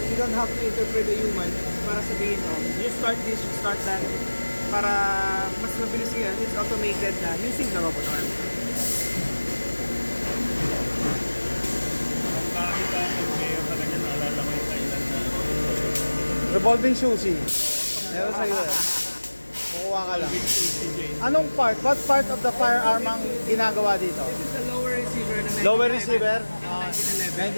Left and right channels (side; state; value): both; inverted; correlation -1.00